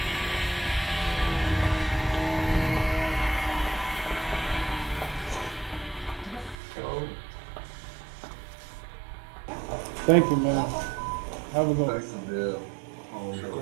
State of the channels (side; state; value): left; drops out; at 6.6 s